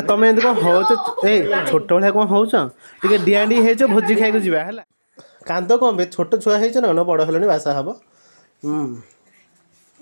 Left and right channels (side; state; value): both; inverted; correlation -1.00